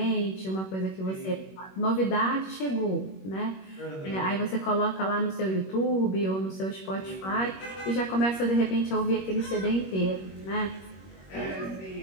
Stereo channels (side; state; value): right; late; 21 ms